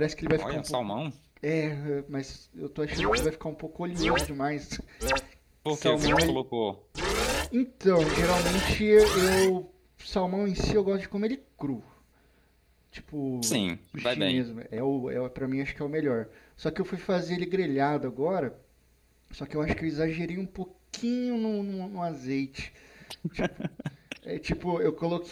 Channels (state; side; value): identical; both; correlation 1.00